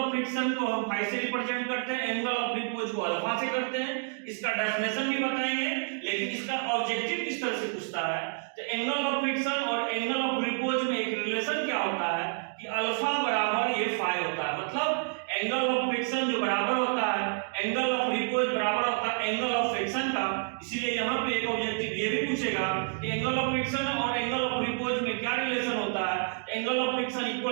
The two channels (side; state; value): left; silent; 58 dB below the other